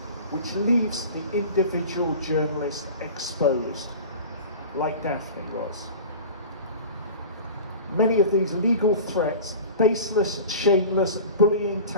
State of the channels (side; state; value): both; inverted; correlation -0.36